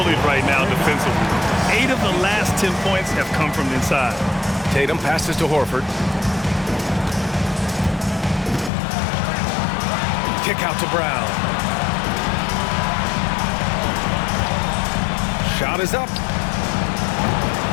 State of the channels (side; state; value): right; drops out; at 8.7 s